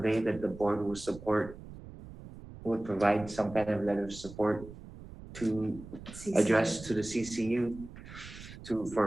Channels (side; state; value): right; noise; rumble, 15 dB below the sound